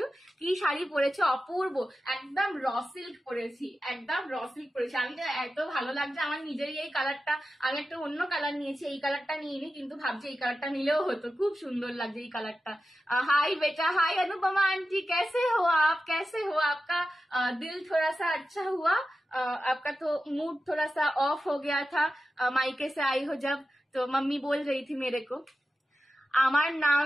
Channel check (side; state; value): both; normal; correlation 0.92